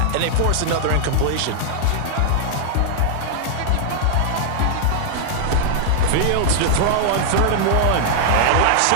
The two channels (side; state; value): both; different; correlation -0.01